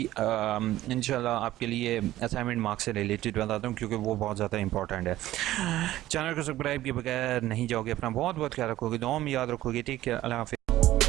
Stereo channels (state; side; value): quieter; left; 14.9 dB